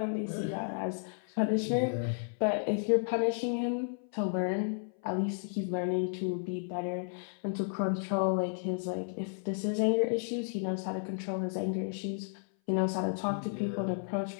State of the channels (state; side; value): silent; right; 56 dB below the other